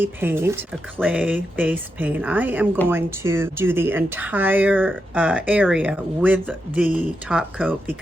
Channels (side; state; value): both; normal; correlation 0.86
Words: paint, a clay-based paint, I am going to do the entire area with the top coat,